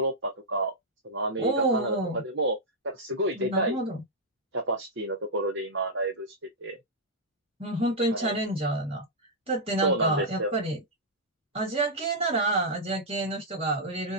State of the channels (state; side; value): normal; both; correlation -0.07